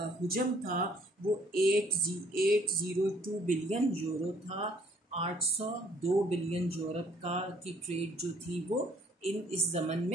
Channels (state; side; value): normal; both; correlation 0.62